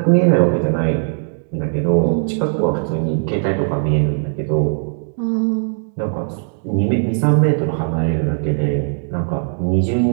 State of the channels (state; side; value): silent; left; 58 dB below the other